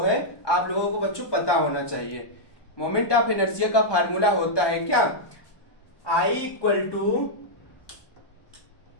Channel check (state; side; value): late; right; 1.2 ms